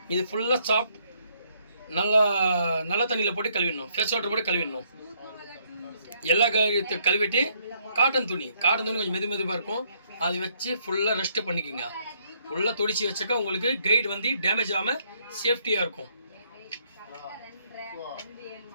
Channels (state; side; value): inverted; both; correlation -0.69